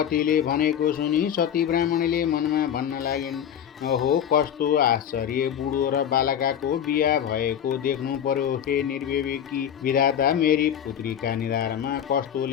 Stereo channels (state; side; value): quieter; right; 9.3 dB